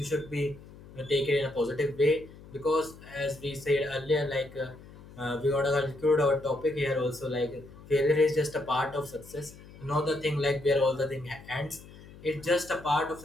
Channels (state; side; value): noise; left; hum, 19 dB below the sound